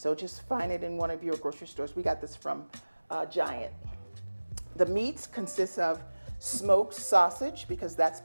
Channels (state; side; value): inverted; both; correlation -1.00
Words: just find it in one of your grocery stores. We got this from Giant. The meats consist of smoked sausage because that's